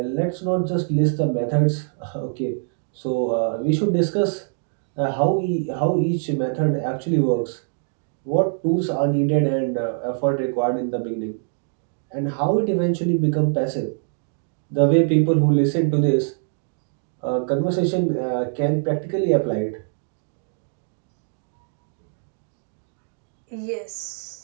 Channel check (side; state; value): left; silent; 60 dB below the other